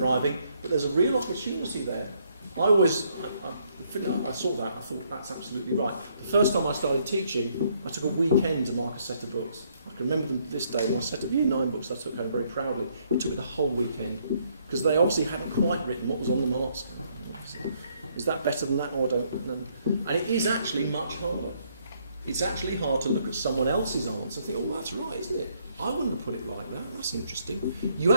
but there's a real opportunity there. I saw that, I thought that's absolutely right. The first time I started teaching, I took a weekend to mark a set of books. I can remember them to this day, my set of Year 9 books I took home very proudly. It took me the whole weekend, because they obviously hadn't quite written what was on the mark scheme. Is that better than that? Oh, I don't know. And it is actually much harder. It's actually hard to look at someone else's answer and think, oh, that's right, isn't it? I wouldn't have put it like that. That's interesting. You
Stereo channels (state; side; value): inverted; both; correlation -0.70